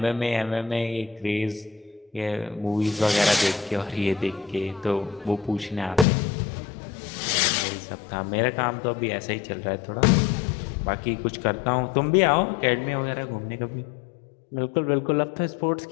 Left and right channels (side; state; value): right; drops out; at 6.1 s